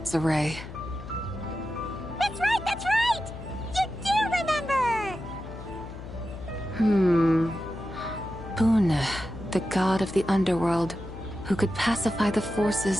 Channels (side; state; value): left; noise; hum, 12 dB below the sound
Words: array. That's right, that's right! You do remember! Boone, the god of the underworld, who could pacify the